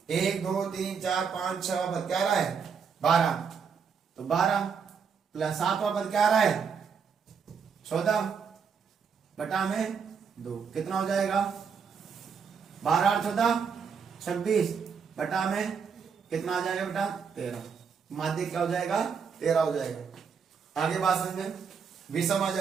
1 2 3 4 5 6 वा पद क्या आ रहा है 12, तो 12 प्लस 7 वा पद क्या आ रहा है 14 बटा में 2, कितना हो जाएगा 12 और 14 26 बटा में कितना आ जाएगा बेटा 13। माध्यक क्या हो जाएगा 13 हो जाएगा। आगे बात समझे, विषम आ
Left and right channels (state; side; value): quieter; left; 6.3 dB